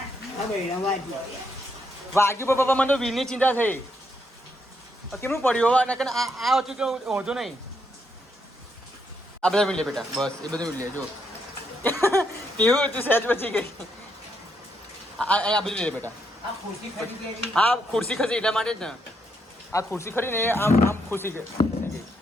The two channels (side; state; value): both; normal; correlation 0.77